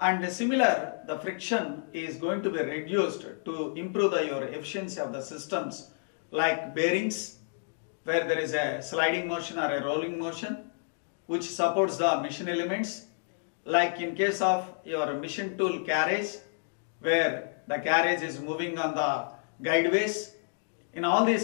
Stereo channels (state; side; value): silent; right; digital silence